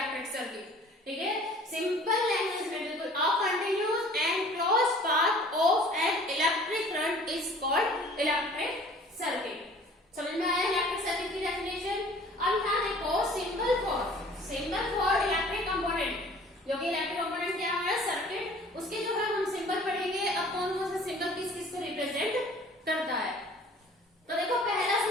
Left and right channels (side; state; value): both; normal; correlation 0.50